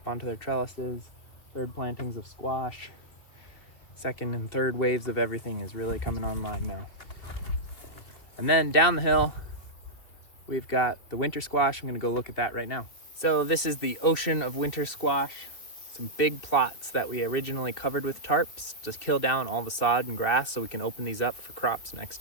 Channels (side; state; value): right; late; 3.0 ms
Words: onto their trellises. Third plantings of squash. Second and third waves of everything is really coming online now. And then down the hill, we've got the winter squash. I'm gonna go look at that right now. So this is the ocean of winter squash. Some big plots that we originally covered with tarps, just kill down all the sod and grass so we can open these up for crops